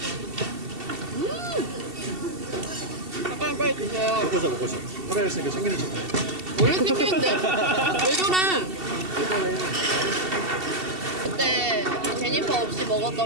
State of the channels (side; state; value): left; late; 2.7 ms